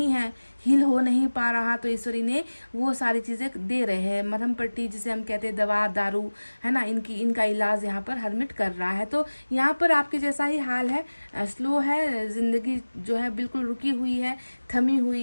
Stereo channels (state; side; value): inverted; both; correlation -1.00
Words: है, हील हो नहीं पा रहा तो ईश्वर इन्हें वो सारी चीज़ें दे रहे हैं। मरहम पट्टी जिसे हम कहते हैं, दवा दारू, है ना, इनका इलाज यहाँ पर हरमिट कर रहा है। तो यहाँ पर आपके जैसा ही हाल है, स्लो है ज़िंदगी, जो है बिल्कुल रुकी हुई है, थमी